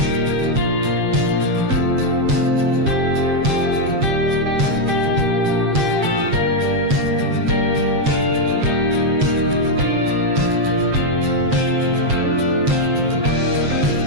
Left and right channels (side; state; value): left; late; 7.6 ms